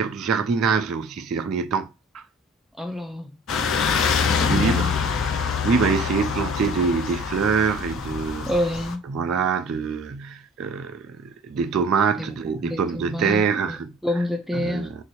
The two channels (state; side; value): normal; both; correlation 0.48